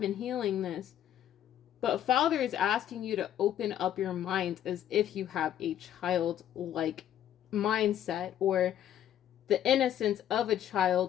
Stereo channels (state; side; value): quieter; right; 11.0 dB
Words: healing this. But Father is asking you to open up your mind as if you have a childlike mindset, or the innocence of a